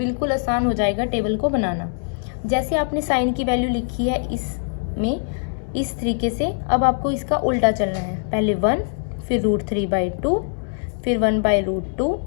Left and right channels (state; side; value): silent; right; 64 dB below the other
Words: आसान हो जाएगा टेबल को बनाना। जैसे आपने साइन की वैल्यू लिखी है इसमें इस तरीके से, अब आपको इसका उल्टा चलना है। पहले 1, फिर √3/2, फिर 1/√2,